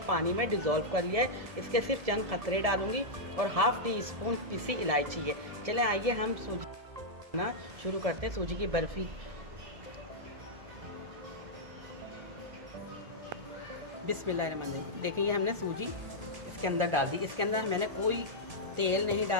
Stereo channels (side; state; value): left; late; 1.7 ms